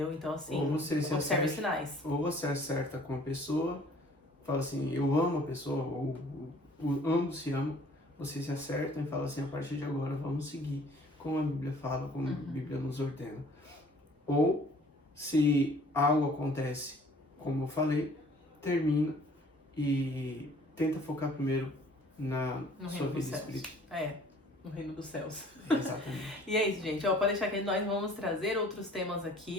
Então, assim, observe os sinais. Ou você acerta com a pessoa, fala assim, eu amo a pessoa, ou ambos se amam, vocês se acertam e falam assim, a partir de agora vamos seguir como a Bíblia fala, como a Bíblia nos ordena. Ou, se algo acontece, como eu falei, termina e tenta focar primeiro na sua vida espiritual. No reino dos céus. Exatamente. E é isso, gente. Pode deixar que nós vamos trazer outros temas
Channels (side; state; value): both; normal; correlation 0.53